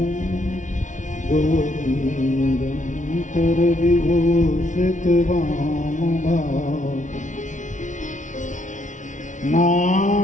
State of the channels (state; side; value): late; right; 0.37 ms